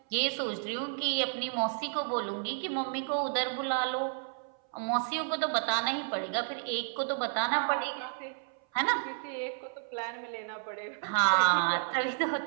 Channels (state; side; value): silent; left; 57 dB below the other